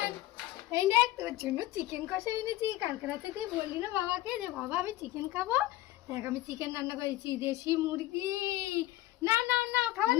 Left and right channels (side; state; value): right; quieter; 16.4 dB